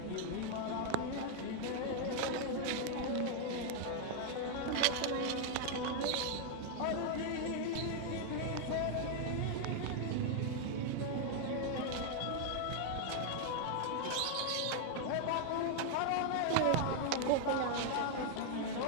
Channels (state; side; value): different; both; correlation 0.00